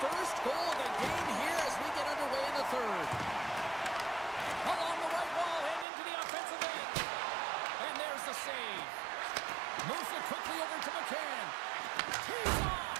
first goal of the game here as we get underway in the third. Along the right wall and into the offensive end. And there's the save. Moves it quickly over to McCann. Tees off.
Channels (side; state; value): left; drops out; at 5.9 s